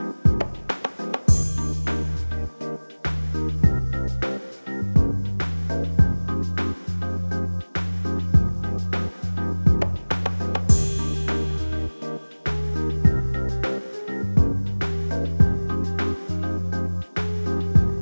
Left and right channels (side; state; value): both; inverted; correlation -1.00